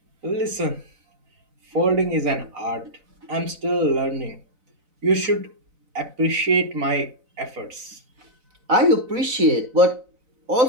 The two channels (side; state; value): left; late; 4.0 ms